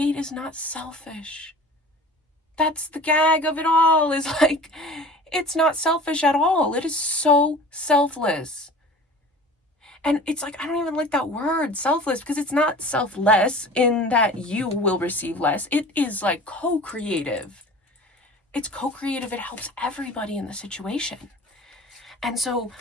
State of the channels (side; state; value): both; normal; correlation 0.41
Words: is not selfish. That's the gag of it all, is like, it's not selfish at all. It is so selfless. And it's like, I don't even like that word, selfless, because it's not selfless in that you will receive less. It is like co-creative. It's co-creative. It helps everybody in the situation. And so